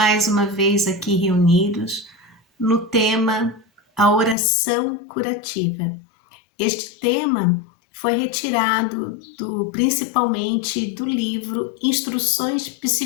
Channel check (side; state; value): right; drops out; at 4.4 s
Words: uma vez aqui reunidos no tema a oração curativa. Este tema foi retirado principalmente do livro Instruções